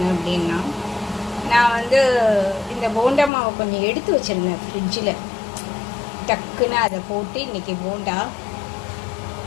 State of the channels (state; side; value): drops out; right; at 3.3 s